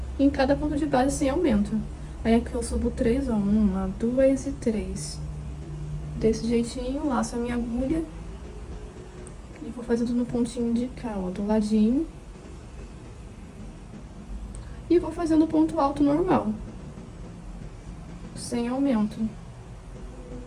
em cada ponto de base sem aumento. Aí aqui eu subo 3, ó. 1, 2 e 3. Desse jeitinho, laço a minha agulha. E vou fazendo no pontinho de cá, ó, do ladinho. E vou fazendo ponto alto normal, sem aumento.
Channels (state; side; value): identical; both; correlation 1.00